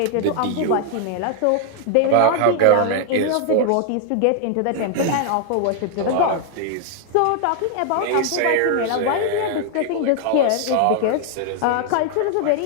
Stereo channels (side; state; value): both; different; correlation 0.00